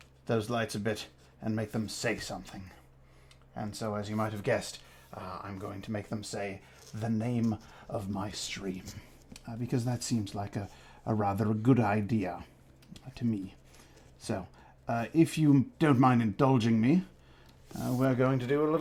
those lights a bit and make them say something? And so, as you might have guessed, I'm going to make them say the name of my stream, because that seems like a rather good idea to me. So, if you don't mind indulging me, we're going to do a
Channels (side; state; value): both; identical; correlation 1.00